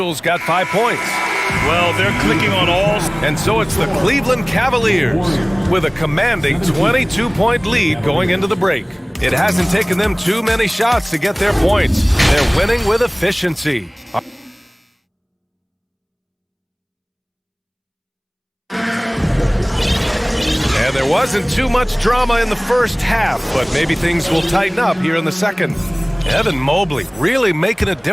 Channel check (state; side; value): identical; both; correlation 1.00